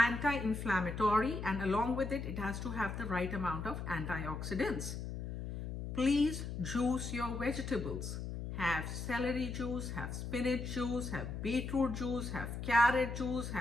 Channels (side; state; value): left; noise; hum, 5 dB below the sound